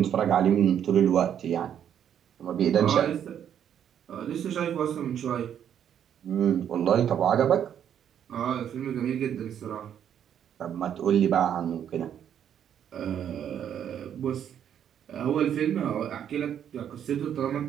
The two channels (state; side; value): quieter; left; 9.3 dB